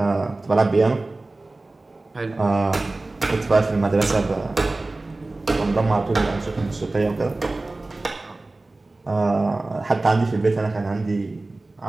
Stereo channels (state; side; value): quieter; left; 3.1 dB